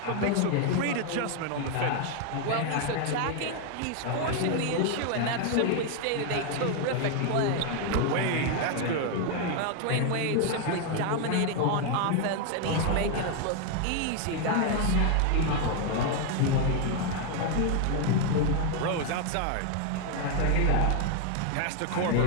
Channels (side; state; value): both; different; correlation 0.01